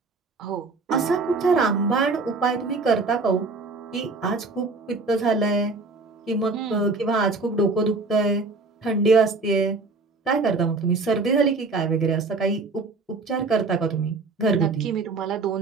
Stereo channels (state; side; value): quieter; left; 3.8 dB